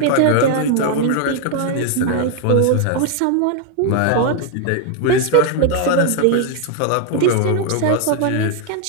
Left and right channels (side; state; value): both; different; correlation 0.00